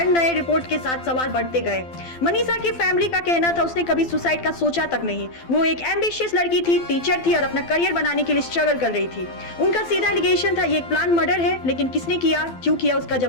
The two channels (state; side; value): late; right; 12 ms